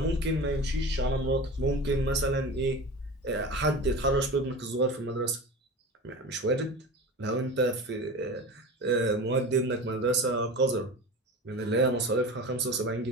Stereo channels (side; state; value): both; normal; correlation 0.32